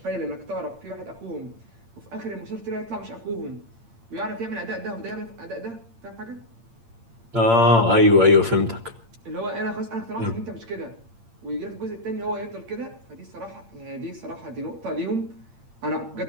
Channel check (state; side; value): late; left; 8.7 ms